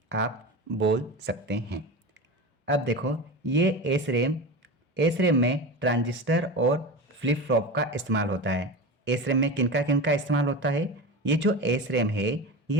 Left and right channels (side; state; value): both; normal; correlation 0.26